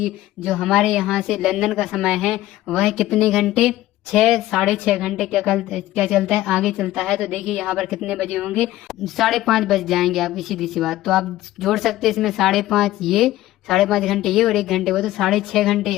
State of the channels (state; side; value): quieter; right; 15.4 dB